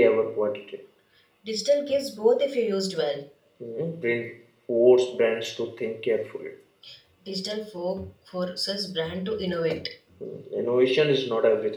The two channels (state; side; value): identical; both; correlation 1.00